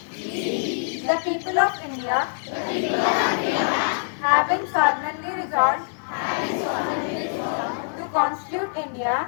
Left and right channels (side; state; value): right; silent; digital silence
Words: the people of India, having solemnly resolved to constitute India